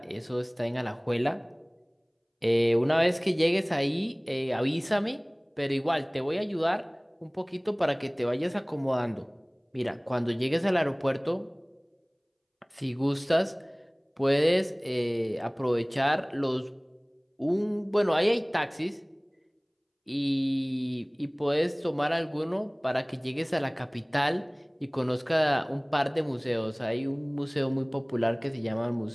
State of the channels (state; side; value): identical; both; correlation 1.00